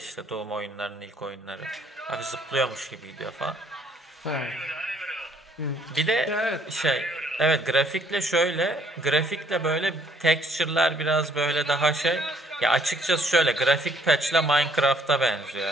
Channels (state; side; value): normal; both; correlation 0.64